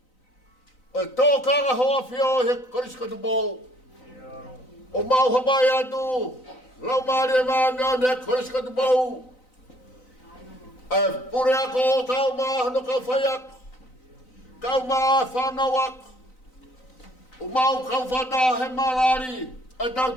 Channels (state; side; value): late; right; 3.9 ms